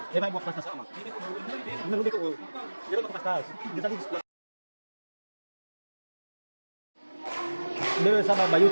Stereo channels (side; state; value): both; inverted; correlation -1.00